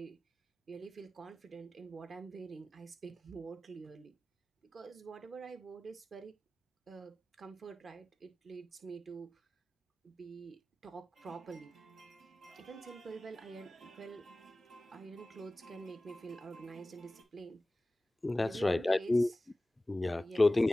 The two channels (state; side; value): normal; both; correlation 0.97